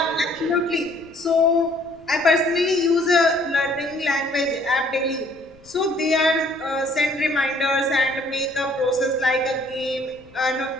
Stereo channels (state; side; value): noise; left; rumble, 28 dB below the sound